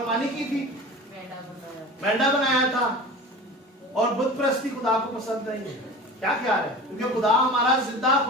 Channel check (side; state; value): both; normal; correlation 0.36